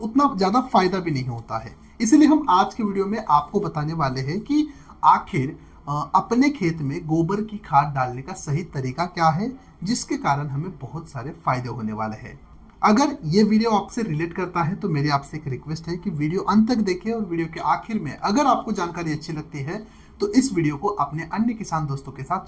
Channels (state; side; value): identical; both; correlation 1.00